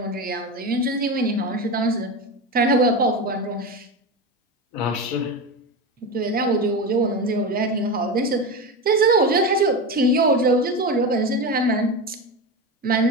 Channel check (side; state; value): both; normal; correlation 0.20